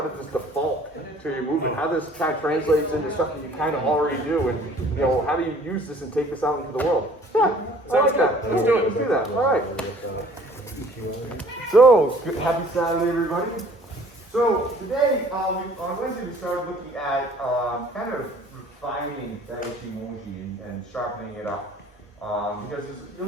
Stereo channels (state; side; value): normal; both; correlation 0.54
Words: this default to your movement? How does this kind of translates into stuff that you kind of already do? And, how do you use this and take this out into the world? Yeah, I like that. Let's do it. Let's do that. All right. So, happy Saturday, everybody. So, today, on Wednesday, we started looking at kind of refining that Ichimonji and sharpening it up. Because it's